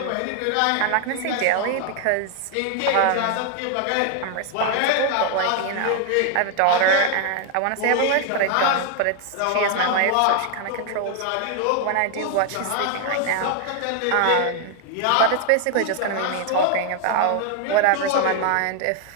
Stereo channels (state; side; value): different; both; correlation 0.00